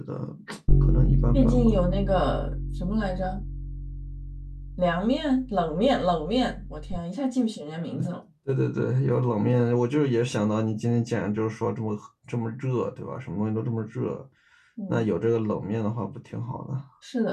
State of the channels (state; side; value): identical; both; correlation 1.00